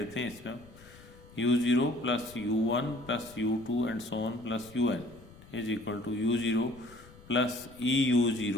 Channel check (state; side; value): noise; left; rumble, 21 dB below the sound